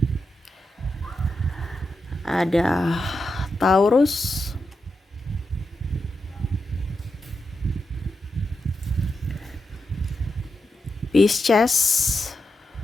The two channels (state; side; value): normal; both; correlation 0.87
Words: ada Taurus, Pisces,